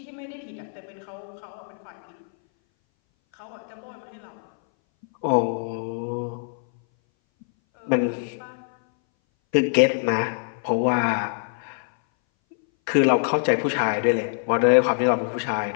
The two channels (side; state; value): right; silent; 60 dB below the other